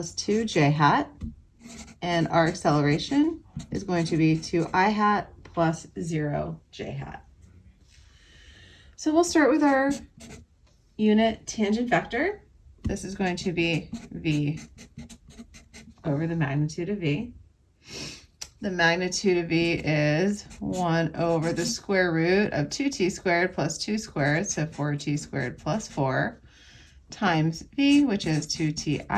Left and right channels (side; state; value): both; identical; correlation 1.00